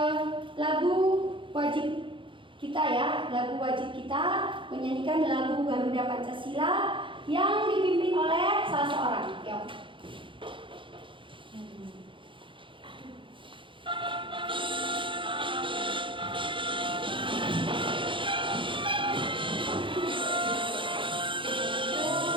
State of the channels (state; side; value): late; left; 0.24 ms